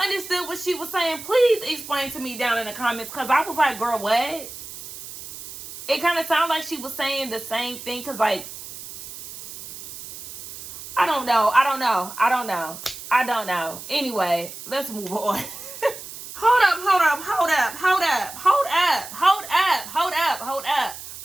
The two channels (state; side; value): noise; right; hiss, 13 dB below the sound